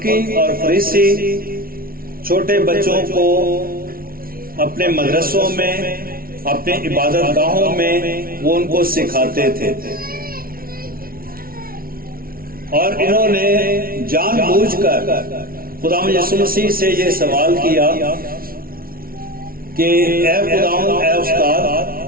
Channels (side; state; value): left; late; 0.43 ms